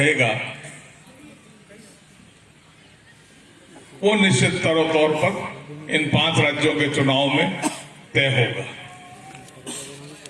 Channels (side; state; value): both; identical; correlation 1.00